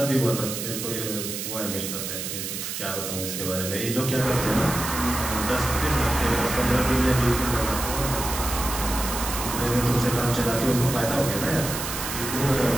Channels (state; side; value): noise; right; hiss, 5 dB below the sound